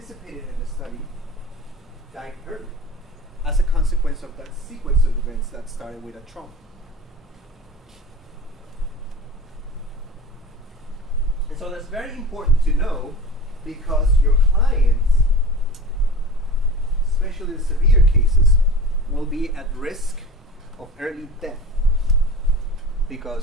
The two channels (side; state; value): both; normal; correlation 0.38